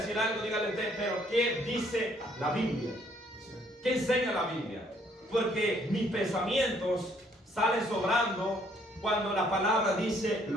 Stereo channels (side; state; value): both; normal; correlation 0.65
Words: algo, dígale usted, pero ¿qué dice la Biblia? ¿Qué enseña la Biblia? Porque mis pensamientos salen sobrando cuando la palabra dice